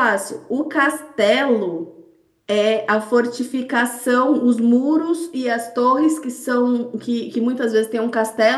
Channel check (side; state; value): both; identical; correlation 1.00